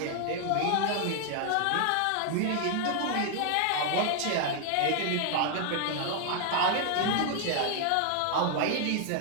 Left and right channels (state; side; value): different; both; correlation 0.00